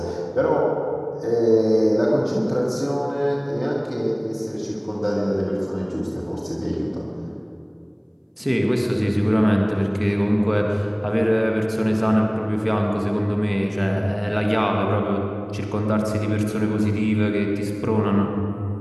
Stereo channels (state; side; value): identical; both; correlation 1.00